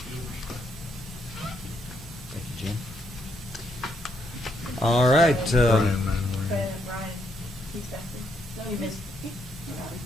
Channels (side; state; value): both; normal; correlation 0.75